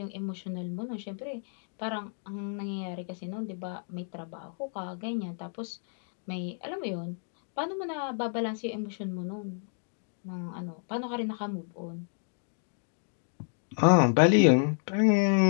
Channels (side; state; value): right; silent; 57 dB below the other